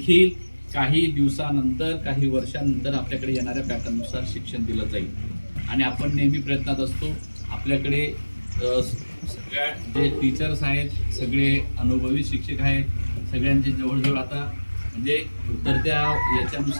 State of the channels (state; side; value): inverted; both; correlation -1.00